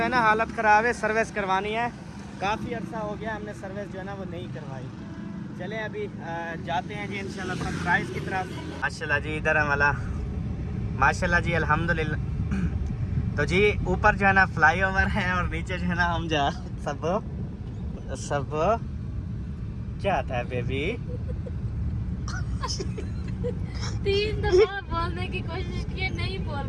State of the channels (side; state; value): both; identical; correlation 1.00